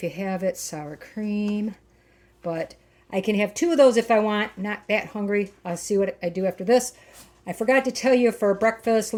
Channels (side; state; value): both; identical; correlation 1.00